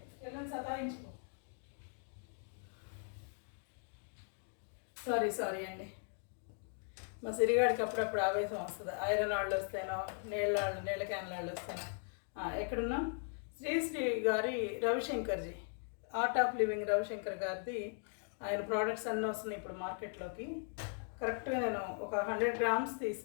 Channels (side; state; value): right; silent; 52 dB below the other